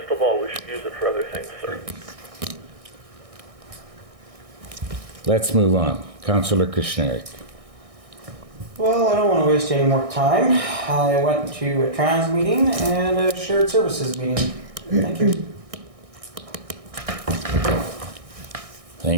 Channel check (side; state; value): left; late; 1.6 ms